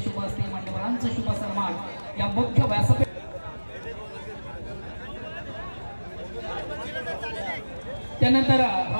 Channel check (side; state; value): both; inverted; correlation -1.00